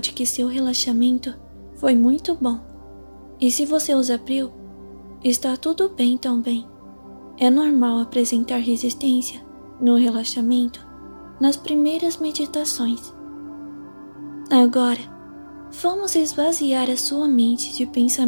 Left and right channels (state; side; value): inverted; both; correlation -1.00